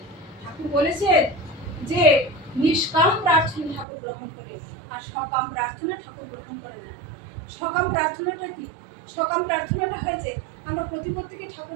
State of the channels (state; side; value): drops out; left; at 3.9 s